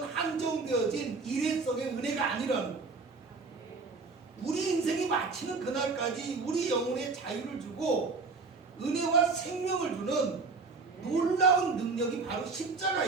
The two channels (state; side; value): quieter; left; 4.2 dB